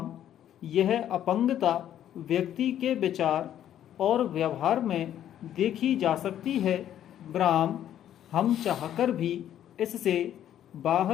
यह अपंगता व्यक्ति के विचार और व्यवहार में देखी जा सकती है ब्राह्म। हम चाहकर भी इससे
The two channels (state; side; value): quieter; right; 10.9 dB